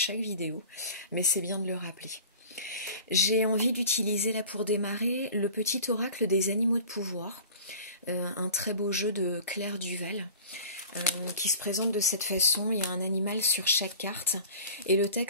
vidéo, mais c'est bien de le rappeler. J'ai envie d'utiliser là pour démarrer le petit oracle des animaux de pouvoir, un très beau jeu de Claire Duval, qui se présente de cette façon. Il y a un animal sur chaque carte et le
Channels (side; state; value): both; inverted; correlation -0.41